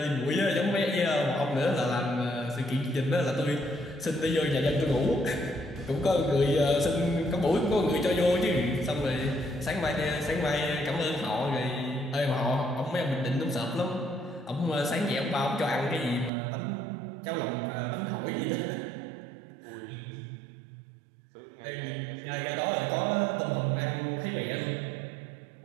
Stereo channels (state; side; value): drops out; left; at 16.3 s